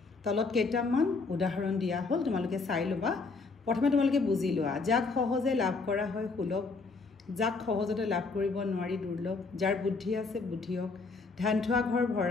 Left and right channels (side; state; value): right; quieter; 4.2 dB